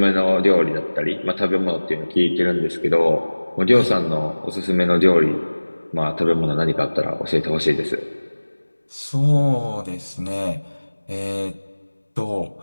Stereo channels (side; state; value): both; inverted; correlation -1.00